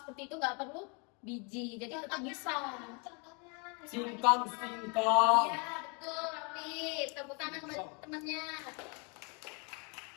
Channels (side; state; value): right; quieter; 34.3 dB